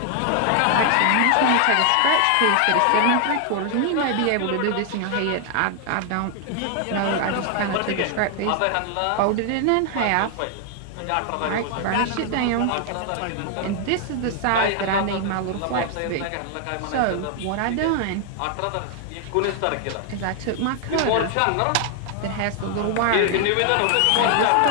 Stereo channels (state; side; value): different; both; correlation 0.00